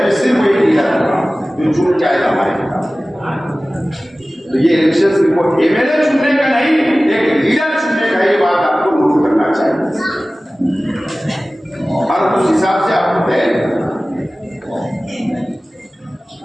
में सिर्फ एक लीडर जो चुन के आएगा हमारे खिलाफ। तो ये इलेक्शन सिर्फ एमएलए चुनने का नहीं, एक लीडर चुनने का, ये बात आपको नोट करना चाहिए और उस हिसाब से आपको तय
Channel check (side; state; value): both; normal; correlation 0.97